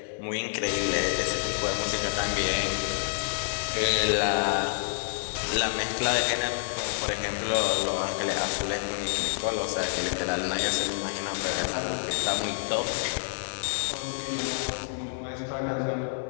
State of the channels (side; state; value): right; silent; digital silence